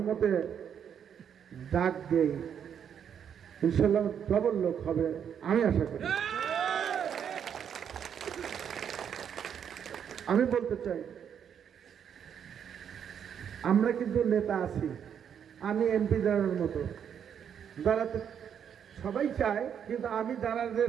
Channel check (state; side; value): quieter; left; 8.3 dB